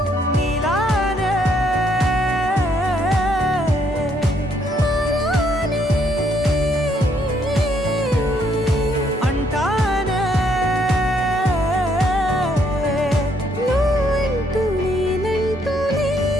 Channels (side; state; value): both; normal; correlation 0.70